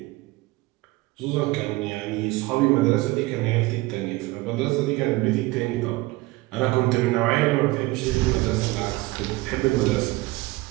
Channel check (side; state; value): left; quieter; 20.7 dB